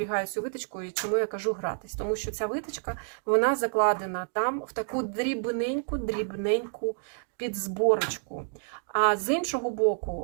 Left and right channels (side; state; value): left; silent; digital silence